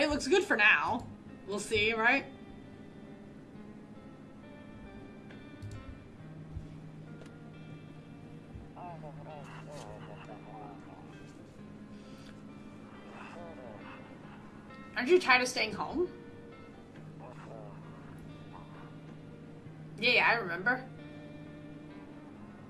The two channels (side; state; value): both; identical; correlation 1.00